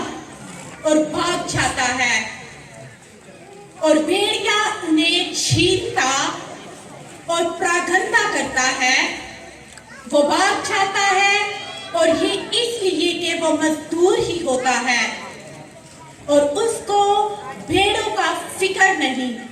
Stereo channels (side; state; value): both; identical; correlation 1.00